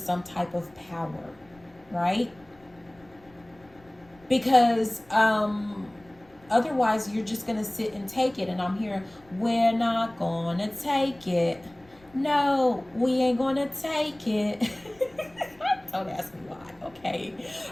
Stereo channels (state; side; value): noise; left; rumble, 28 dB below the sound